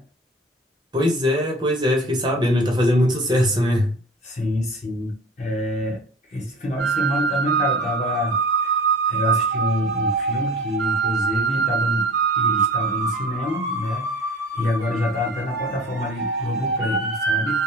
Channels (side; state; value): both; normal; correlation 0.41